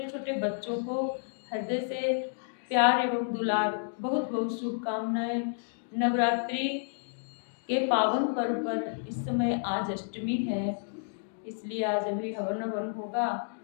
छोटे बच्चों को हृदय से प्यार एवं दुलार, बहुत बहुत शुभकामनाएं। नवरात्रि के पावन पर्व पर इस समय आज अष्टमी है, इसलिए आज अभी हवन हवन होगा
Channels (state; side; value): silent; right; digital silence